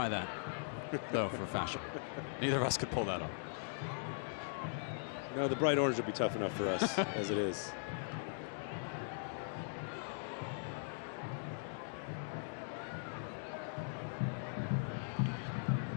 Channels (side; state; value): right; silent; digital silence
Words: that, though, for fashion. Neither of us could pull that off. No, the bright orange will be tough enough for us as it is.